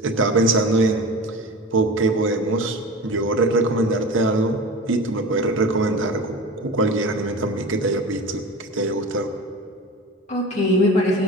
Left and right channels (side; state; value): both; normal; correlation 0.32